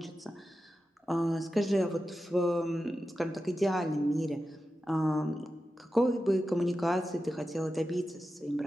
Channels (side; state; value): both; normal; correlation 0.92